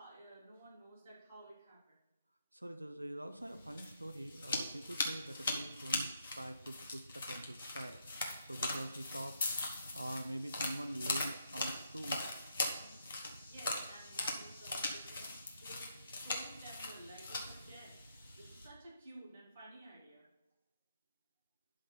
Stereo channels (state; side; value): inverted; both; correlation -0.76